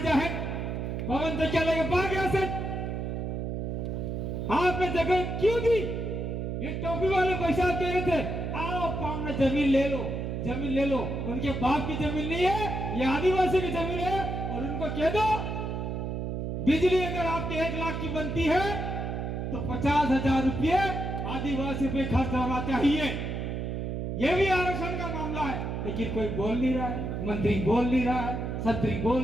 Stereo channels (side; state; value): right; noise; hum, 3 dB below the sound